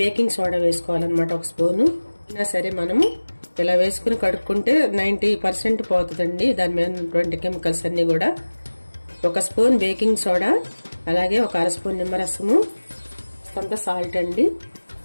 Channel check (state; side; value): inverted; both; correlation -1.00